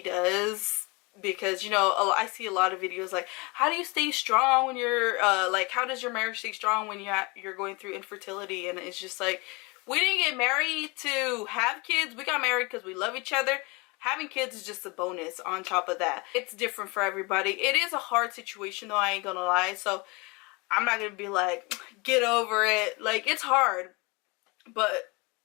does. Because, you know, I see a lot of videos like, how do you stay strong when you're like, how does your marriage stay strong when you're going through infertility? And it's just like, we didn't get married to have kids. We got married because we love each other. Having kids is just a bonus on top of that. It's different for everybody. It is a hard situation though, I ain't gonna lie. So I'm not gonna be like, get over it. Like, it's hard, but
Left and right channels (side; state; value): right; quieter; 27.4 dB